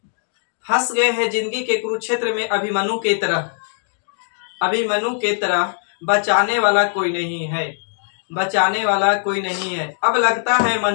फंस गए हैं जिंदगी के कुरुक्षेत्र में अभिमन्यु के तरह बचाने वाला कोई नहीं है, बचाने वाला कोई नहीं है, अब लगता है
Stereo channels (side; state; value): right; silent; digital silence